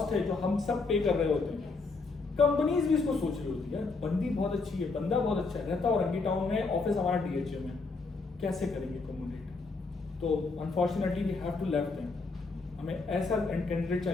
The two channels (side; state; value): right; quieter; 4.0 dB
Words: है जो हम सब पे कर रहे होते हैं। कंपनीज भी इसको सोच रही होती है, बंदी बहुत अच्छी है, बंदा बहुत अच्छा है, रहता और रंगी टाउन में, ऑफिस हमारा DHA में, कैसे करेंगे कम्युनिकेट? तो unfortunately we have to left them, हमें ऐसा कैंडिडेट